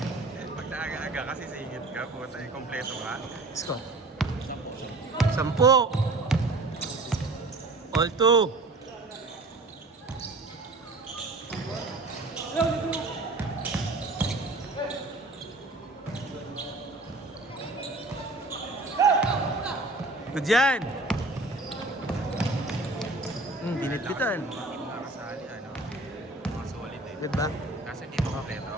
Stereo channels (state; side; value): quieter; left; 3.1 dB